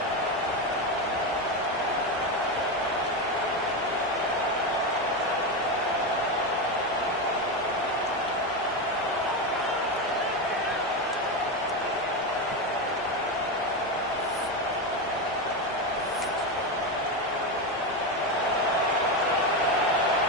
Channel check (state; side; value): normal; both; correlation 0.13